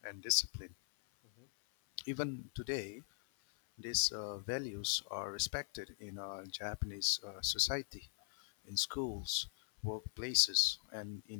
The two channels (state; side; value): silent; right; 51 dB below the other